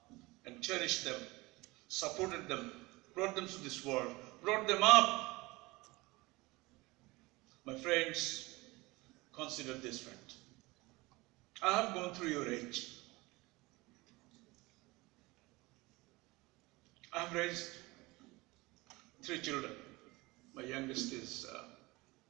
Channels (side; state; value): left; quieter; 22.3 dB